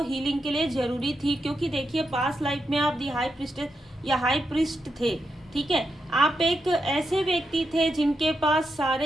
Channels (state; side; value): normal; both; correlation 0.84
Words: हीलिंग के लिए ज़रूरी थी, क्योंकि देखिए पास्ट लाइफ में आप दी हाई प्रिस्टेस या हाई प्रिस्ट थे। ठीक है, आप एक ऐसे व्यक्ति थे जिनके पास